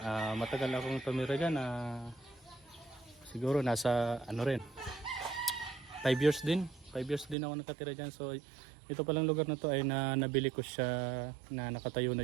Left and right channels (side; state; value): left; drops out; at 7.4 s